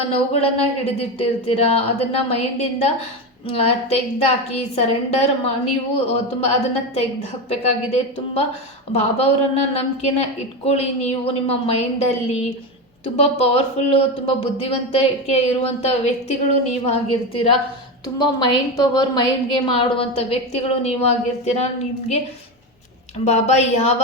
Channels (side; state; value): both; normal; correlation 0.17